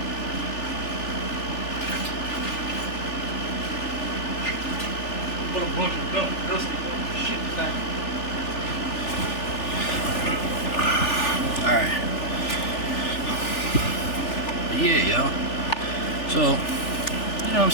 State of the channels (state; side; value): late; right; 3.4 ms